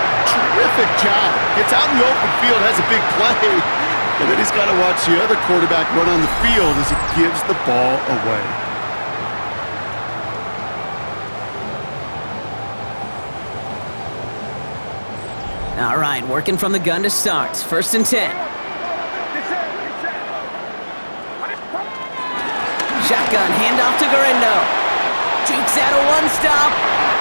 terrific job. Gets out in the open field, has a big play. And then he's got to watch the other quarterback run on the field as he gives the ball away. All right, working from the gun to start. 1st and 10. Shotgun, handoff to Garindo. Jukes out a one-stop.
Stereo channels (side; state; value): both; inverted; correlation -1.00